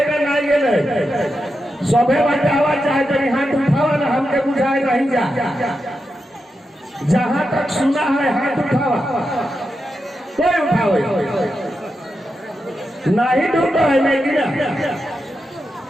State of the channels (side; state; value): both; normal; correlation 0.88